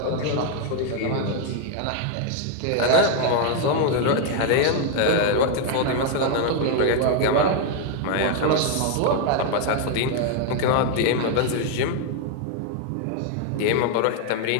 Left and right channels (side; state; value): both; different; correlation 0.00